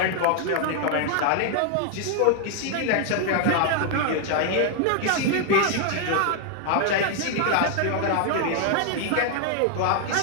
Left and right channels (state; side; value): different; both; correlation 0.00